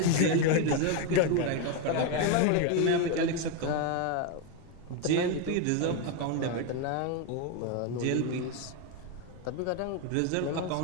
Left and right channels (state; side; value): different; both; correlation 0.02